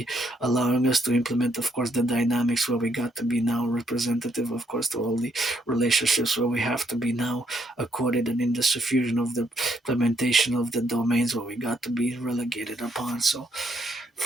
allowing us to implement, of course, the dynamics where we got to be now representative, of course, to all the relationships where we have to be now accorded, and in the suffusion of the implementation of the domains where we got to be relegated upon. So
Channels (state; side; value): normal; both; correlation 0.73